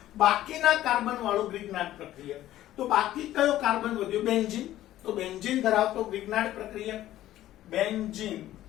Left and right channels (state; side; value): quieter; right; 13.8 dB